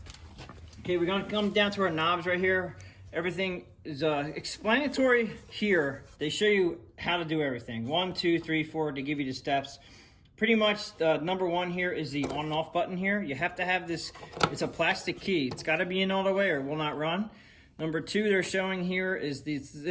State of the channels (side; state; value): both; identical; correlation 1.00